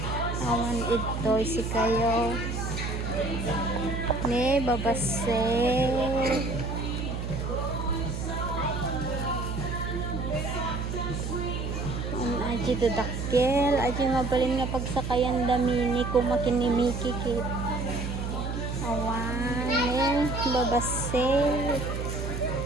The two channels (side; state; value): right; noise; hum, 3 dB below the sound